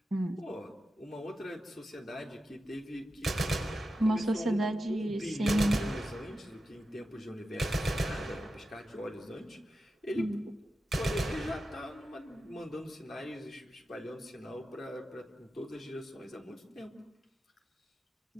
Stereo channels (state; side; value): normal; both; correlation 0.91